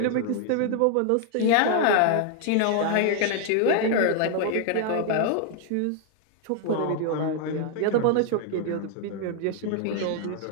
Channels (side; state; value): both; different; correlation 0.00